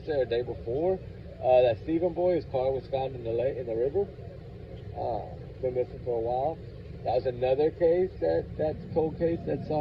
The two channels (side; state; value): both; identical; correlation 1.00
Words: or the day before. That Stephen boy, his car was found in the river. Been missing for a while. That was another case that's cold case that's